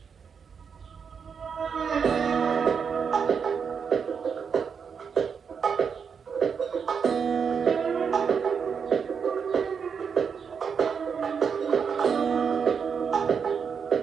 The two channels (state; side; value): quieter; left; 6.4 dB